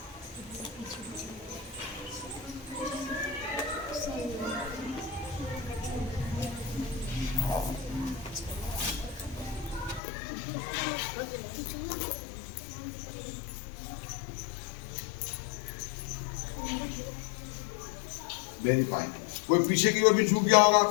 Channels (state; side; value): drops out; right; at 10.0 s